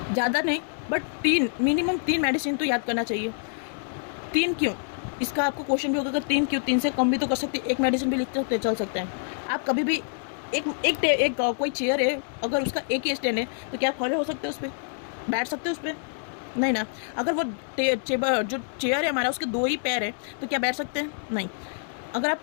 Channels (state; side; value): silent; right; 60 dB below the other